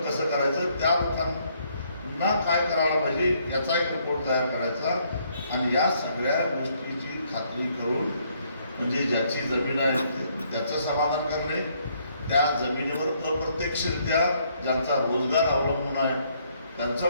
कसं करायचं, त्या लोकांना काय करायला पाहिजे याचा एक रिपोर्ट तयार करायचा. आणि या सगळ्या गोष्टीची खात्री करून म्हणजे ज्याची जमीन आहे त्याचं समाधान करणे, त्या जमिनीवर अप्रत्यक्षरित्या ज्यांचा रोजगार अवलंबून आहे त्यांचं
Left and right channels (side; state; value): both; inverted; correlation -0.69